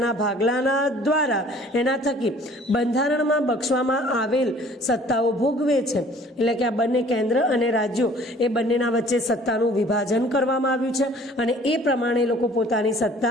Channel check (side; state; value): both; normal; correlation 0.53